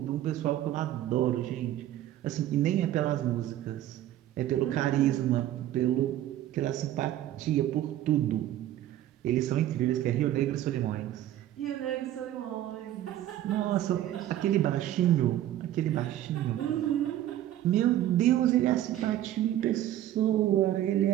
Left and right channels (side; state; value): left; quieter; 12.9 dB